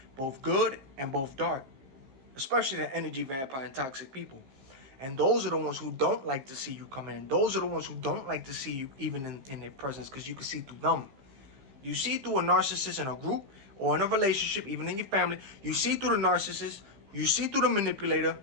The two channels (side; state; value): left; late; 15 ms